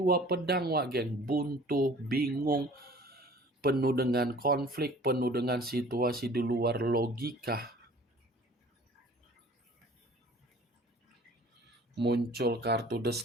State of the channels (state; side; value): normal; both; correlation 0.49